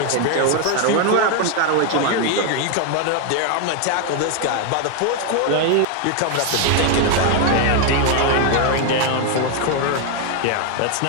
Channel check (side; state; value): both; different; correlation 0.01